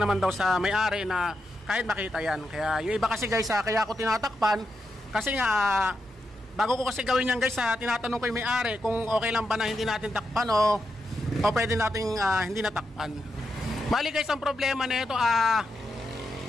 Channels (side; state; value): both; normal; correlation 0.85